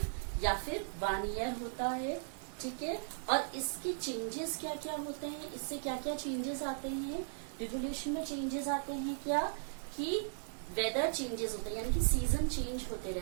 या फिर 1 ईयर होता है, ठीक है. और इसके चेंजेस क्या क्या होते हैं, इससे क्या क्या चेंजेस आते हैं, रिवोल्यूशन में चेंजेस आते हैं क्या, कि वेदर चेंजेस होते हैं, यानी कि सीजन चेंज होते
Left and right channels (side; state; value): left; silent; digital silence